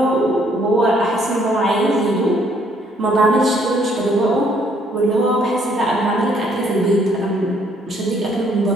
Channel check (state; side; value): normal; both; correlation 0.66